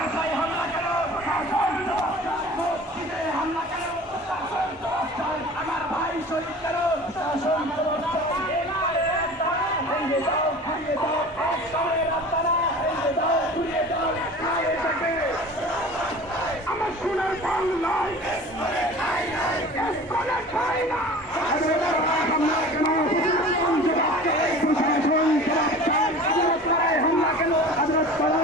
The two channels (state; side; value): normal; both; correlation 0.40